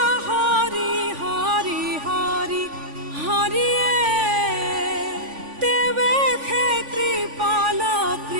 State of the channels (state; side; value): late; left; 3.5 ms